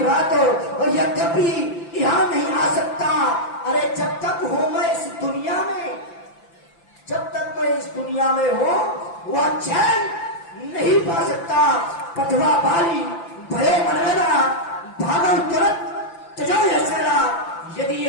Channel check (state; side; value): late; right; 5.9 ms